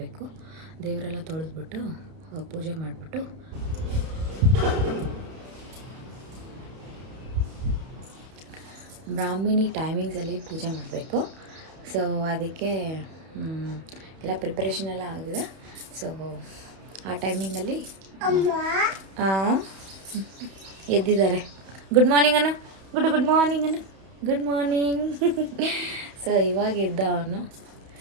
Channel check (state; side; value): late; left; 31 ms